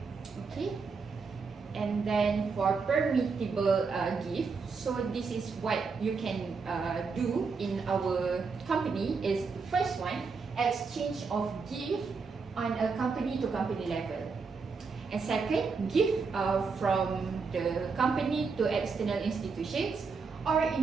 Okay. And then for permissible gift, so this is what you can do in our company is the first one, exchange of gift on a company to company level. And second, gift from the company to external institutions or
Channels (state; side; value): quieter; left; 4.9 dB